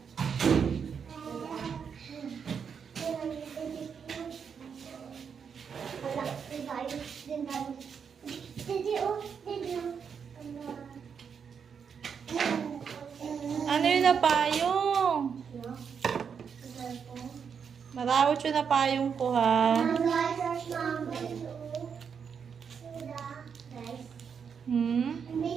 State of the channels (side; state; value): left; quieter; 6.7 dB